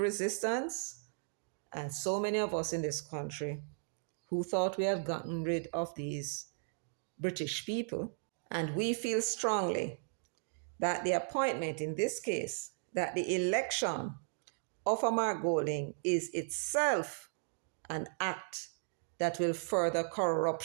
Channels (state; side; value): silent; left; digital silence